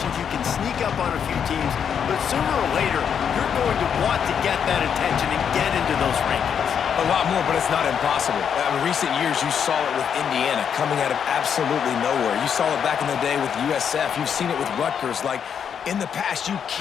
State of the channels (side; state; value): right; quieter; 7.7 dB